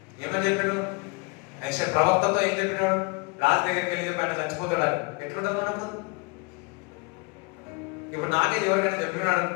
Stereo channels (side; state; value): right; quieter; 29.5 dB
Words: ఏమని చెప్పాడు? ప్రవక్తతో ఏం చెప్పినాడు? రాజు దగ్గరికి వెళ్ళి చెప్పి ఆయన చచ్చిపోతాడు. ఎట్లుంటుంది మనకు? ఇప్పుడు నాకే ఎవరికైనా చెప్పినాడు,